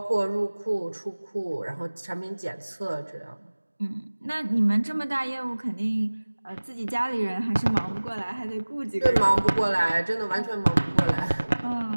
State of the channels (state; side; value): inverted; both; correlation -1.00